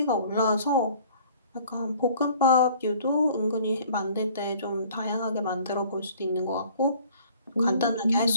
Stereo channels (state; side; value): inverted; both; correlation -0.53